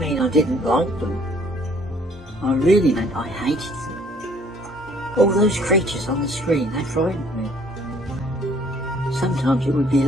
I didn't like them. I really meant I hated them. All those creatures on the screen, they frightened me. Sometimes it would be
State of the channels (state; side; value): normal; both; correlation 0.60